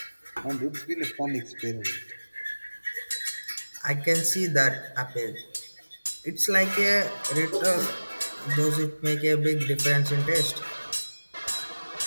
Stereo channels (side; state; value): both; inverted; correlation -1.00